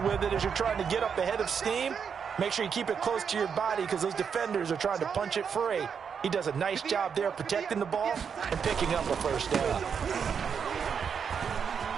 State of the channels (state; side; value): quieter; left; 6.8 dB